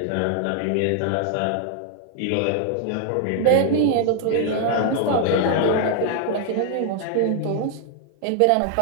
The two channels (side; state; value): both; different; correlation 0.00